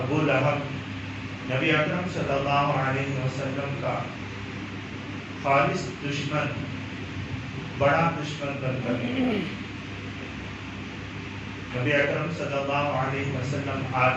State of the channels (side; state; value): both; identical; correlation 1.00